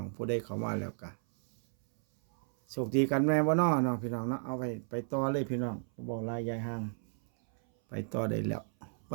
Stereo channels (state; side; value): silent; left; 56 dB below the other